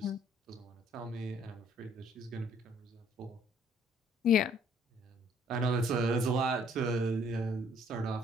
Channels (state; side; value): normal; both; correlation 0.61